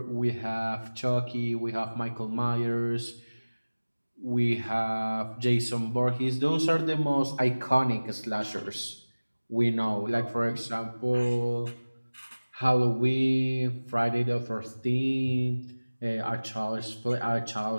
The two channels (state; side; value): inverted; both; correlation -1.00